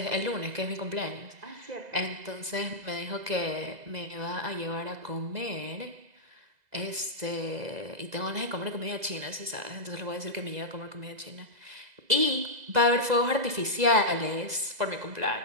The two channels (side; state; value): left; late; 2.0 ms